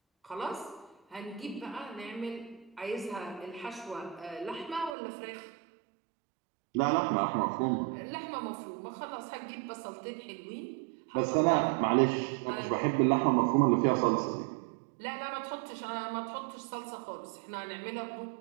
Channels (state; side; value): drops out; left; at 5.0 s